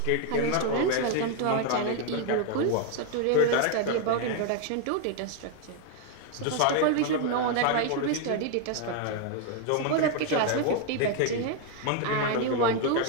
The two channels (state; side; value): different; both; correlation 0.00